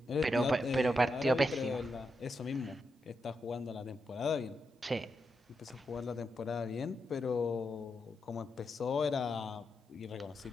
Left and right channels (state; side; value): normal; both; correlation 0.85